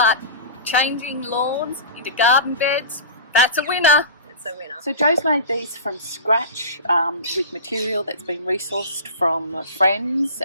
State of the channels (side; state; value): both; inverted; correlation -0.34